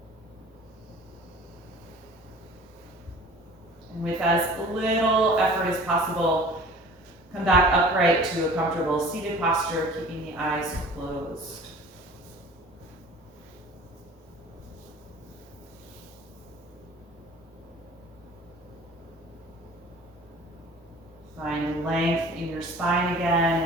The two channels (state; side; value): normal; both; correlation 0.45